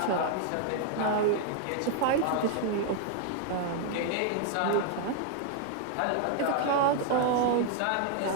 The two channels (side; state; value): both; different; correlation 0.00